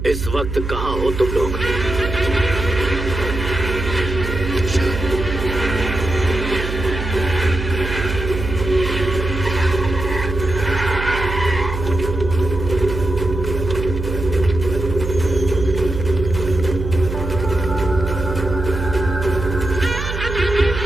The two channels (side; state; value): right; noise; hum, 5 dB below the sound